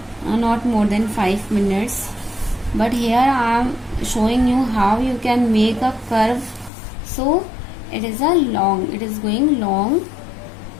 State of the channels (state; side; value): drops out; right; at 6.7 s